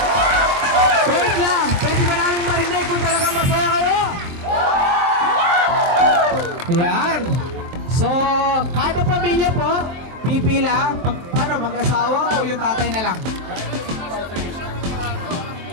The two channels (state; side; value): late; left; 23 ms